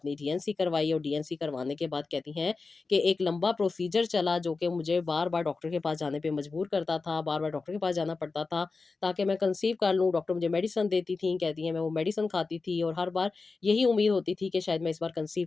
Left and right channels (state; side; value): quieter; right; 4.1 dB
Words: डीएनसी करवाई, और डीएनसी करवाने के बाद कहती हैं कि एक लंबा प्रोसीजर चला, जो कि मुझे बार-बार डॉक्टर के पास जाने पे मजबूर करता था, बार-बार डॉक्टर के पास जाना पड़ता था, ताकि मैं कंसीव कर लूँ। डॉक्टर मुझे मेडिसिन देती थीं, कहती हैं मैं वो मेडिसिन खाती थी, और हर बार यही उम्मीद होती थी कि शायद मैं इस बार कंसीव